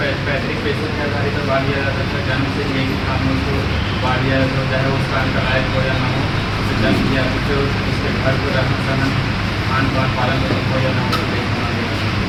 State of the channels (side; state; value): both; identical; correlation 1.00